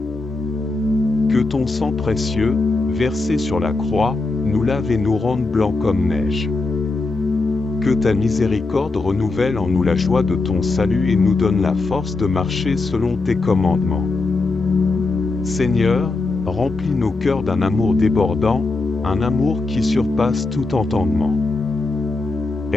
Que ton sang précieux, versé sur la croix, nous lave et nous rende blancs comme neige. Que ta miséricorde renouvelle en nous la joie de ton salut et nous donne la force de marcher selon tes commandements. Seigneur, remplis nos cœurs d'un amour débordant, un amour qui surpasse tout entendement.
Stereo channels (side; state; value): right; quieter; 3.5 dB